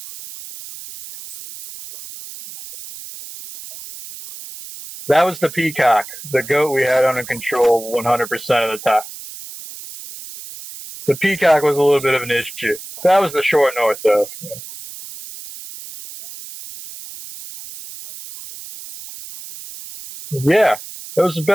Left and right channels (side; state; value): right; noise; hiss, 14 dB below the sound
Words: You hunted it like it got away. You were like running around. That was the peacock. The that goat was- we had under control okay, 100% of the time. Yeah. Okay. All right. Yeah, but The you peacock like was a little you, bit of an you, issue. you fucking That was the short north, though. you bled it out in your backyard, hanging from the tree that's right next to the alleyway. Yeah, that was the